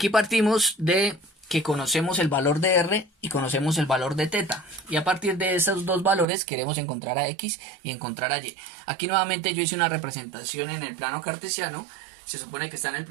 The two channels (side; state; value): left; drops out; at 6.2 s